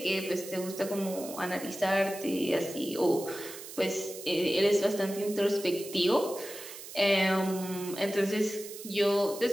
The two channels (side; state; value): right; noise; hiss, 13 dB below the sound